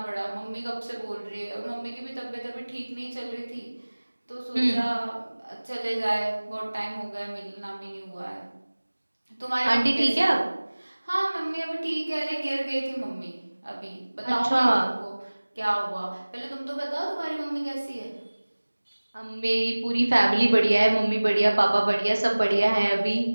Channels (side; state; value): both; inverted; correlation -1.00